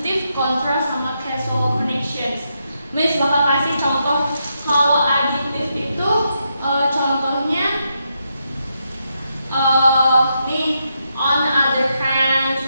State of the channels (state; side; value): inverted; both; correlation -0.82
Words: contrast, sama causal connections. Miss bakal kasih contoh. Kalau additive itu contohnya nih, on the other hand,